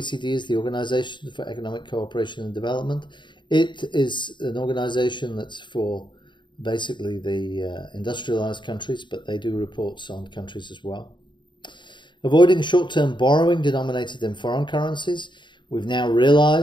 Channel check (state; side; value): late; right; 0.23 ms